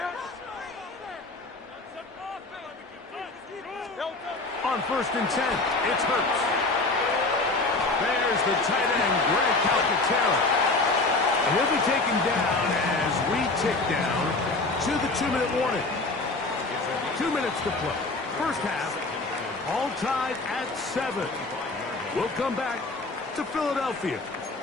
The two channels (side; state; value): right; quieter; 3.3 dB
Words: On 1st and 10, it's Hurts. There's the tight end, Greg Calcaterra. And he'll be taken down as we tick down to the 2-minute warning. 2 minutes to play. First half, all tied at 7. We'll come back to Philadelphia